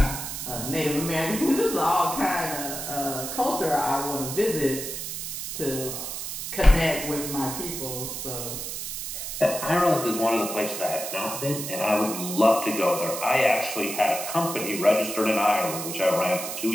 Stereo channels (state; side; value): noise; right; hiss, 6 dB below the sound